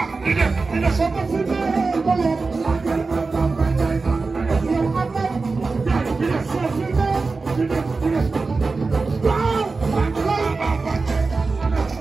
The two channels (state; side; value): quieter; left; 4.0 dB